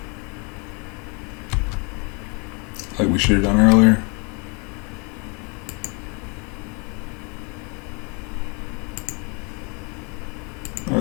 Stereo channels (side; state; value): right; quieter; 32.9 dB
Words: Like we should have done earlier.